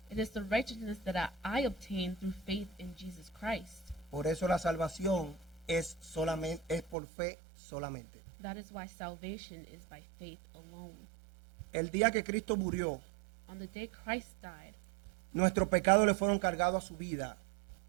It is the righteousness that I obtain through faith in Jesus Christ. Por eso la salvación es por fe solamente. That is why salvation is by faith alone. El día que Cristo murió, On the day Christ died, nuestros pecados le fueron cargados a su vida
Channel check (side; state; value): left; drops out; at 7.0 s